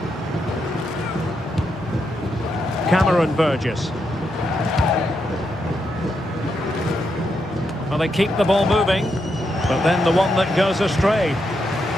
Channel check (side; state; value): both; normal; correlation 0.82